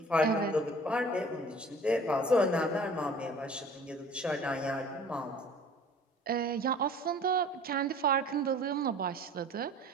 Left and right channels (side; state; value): both; normal; correlation 0.47